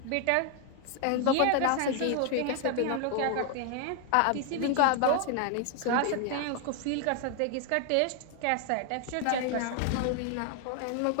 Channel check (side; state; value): both; different; correlation 0.00